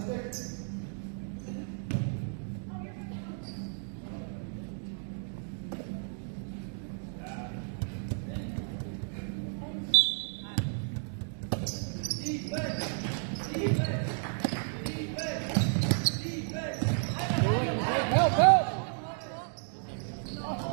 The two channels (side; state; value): left; silent; 56 dB below the other